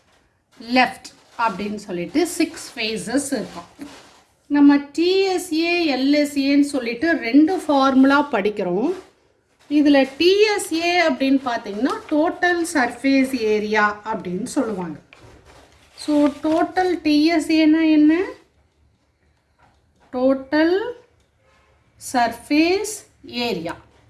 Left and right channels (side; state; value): both; identical; correlation 1.00